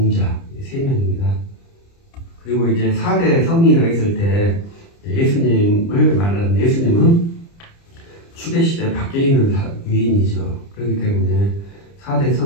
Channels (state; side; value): late; right; 30 ms